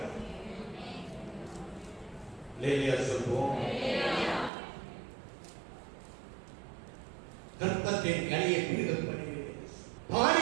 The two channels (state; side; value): drops out; left; at 4.5 s